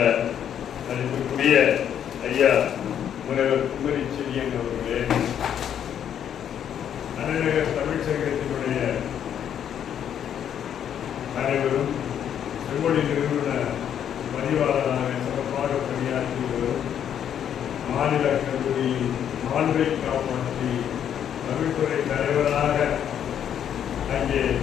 அதற்குரிய ஐயா முனைவர் குமரி செடியன் அவர்களே, அண்ணநகர் தமிழ்ச்சங்கத்தினுடைய அனைவரும், செம்மொழி நிறுவன பதிவாளராக சிறப்பாக பணியாற்றி வரும் மாநில கல்லூரியில் மாண்பை காப்பாற்றி தமிழ்துறை தலைவராக அங்கே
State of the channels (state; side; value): quieter; right; 9.3 dB